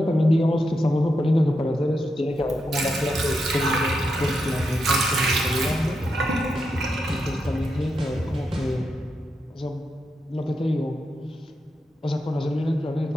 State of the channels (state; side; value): normal; both; correlation 0.85